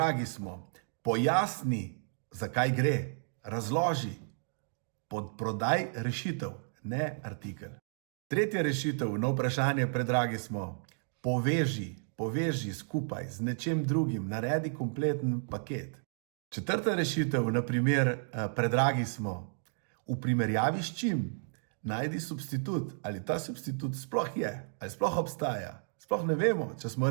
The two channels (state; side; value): silent; left; digital silence